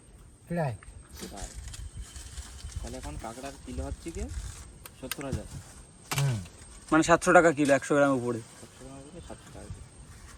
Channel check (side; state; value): both; identical; correlation 1.00